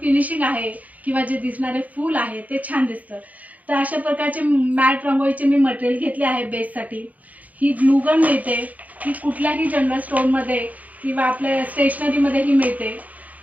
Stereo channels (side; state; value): left; late; 0.076 ms